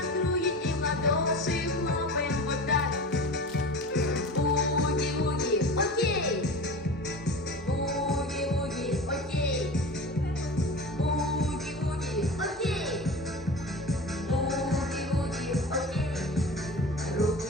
круги и в ладоши хлопаем вот так. Буги-буги, окей. Буги-буги, окей. Буги-буги, окей. Буги-буги, окей. Руку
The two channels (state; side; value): normal; both; correlation 0.33